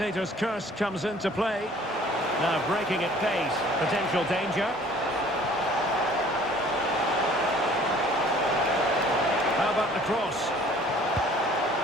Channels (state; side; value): normal; both; correlation 0.53